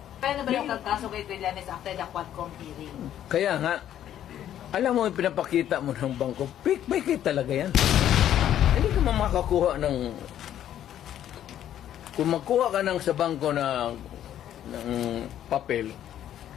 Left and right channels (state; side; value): quieter; right; 11.1 dB